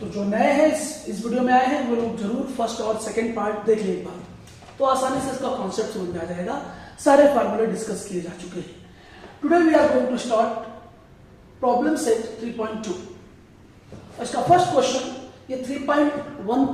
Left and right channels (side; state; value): both; identical; correlation 1.00